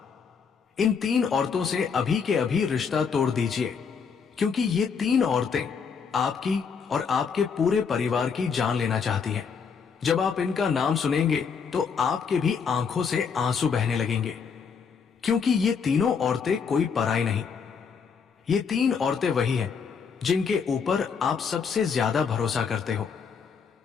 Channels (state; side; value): quieter; right; 6.1 dB